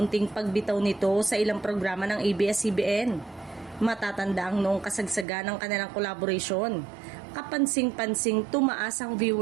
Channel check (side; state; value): left; drops out; at 5.2 s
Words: pagbitaw nito sa ilang programa ng ABS-CBN. Matatanda ang noong kasagsagan ng kanilang collaboration. Kapansing-pansing tumaas ang